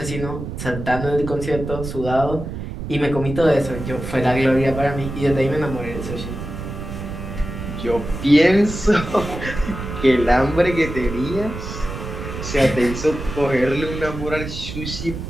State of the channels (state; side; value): noise; right; rumble, 8 dB below the sound